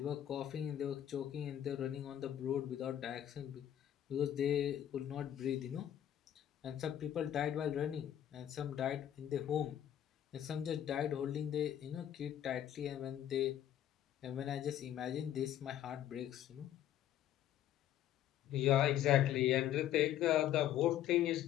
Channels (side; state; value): right; quieter; 11.2 dB